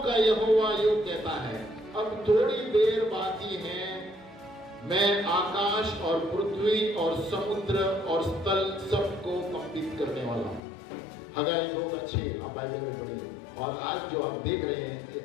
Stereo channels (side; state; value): right; drops out; at 10.6 s